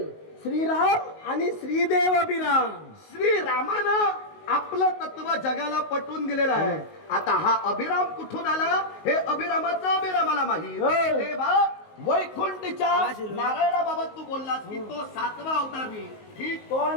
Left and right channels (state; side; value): late; right; 19 ms